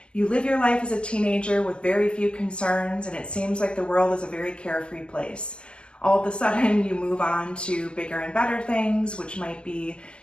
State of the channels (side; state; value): right; late; 0.050 ms